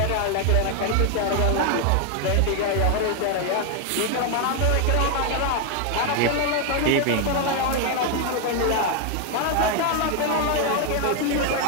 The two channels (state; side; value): different; both; correlation 0.01